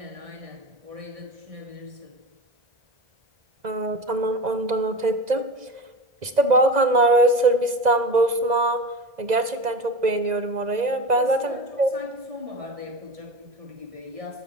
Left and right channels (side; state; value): left; late; 2.0 ms